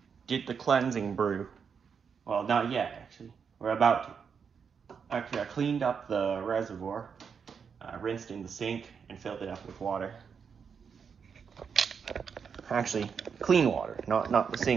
did the cleansing brew. Well, not yet, actually. We're about to. Actually, I cleaned up the reservoir, rinsed in the sink, and filled it up with water. Actually, clean water, not the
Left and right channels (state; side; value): quieter; left; 6.4 dB